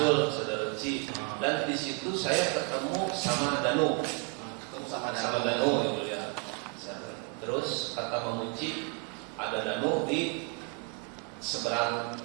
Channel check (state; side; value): quieter; left; 33.5 dB